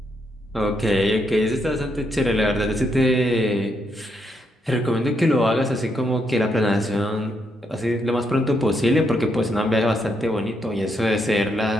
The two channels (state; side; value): normal; both; correlation 0.78